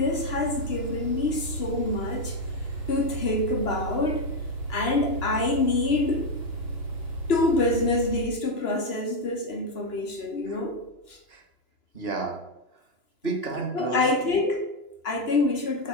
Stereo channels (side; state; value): right; late; 2.9 ms